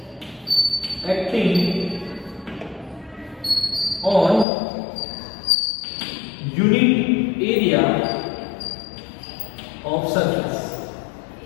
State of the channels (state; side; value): drops out; right; at 4.5 s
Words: acting on unit area of surface.